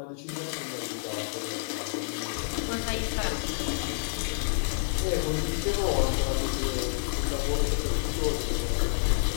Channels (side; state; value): right; silent; 59 dB below the other